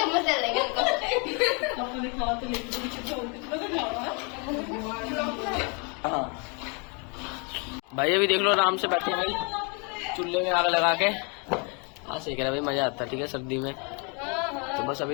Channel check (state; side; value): quieter; right; 34.1 dB